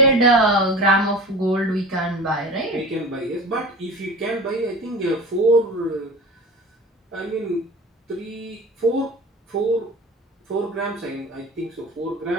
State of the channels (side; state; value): both; normal; correlation 0.36